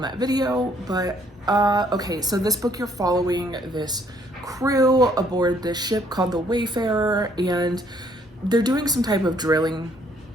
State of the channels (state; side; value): normal; both; correlation 0.65